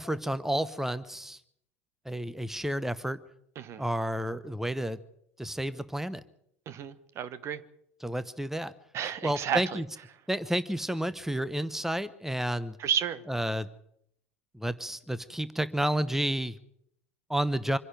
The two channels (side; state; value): both; normal; correlation 0.80